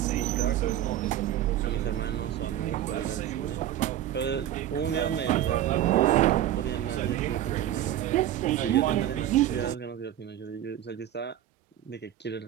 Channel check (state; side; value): quieter; left; 12.1 dB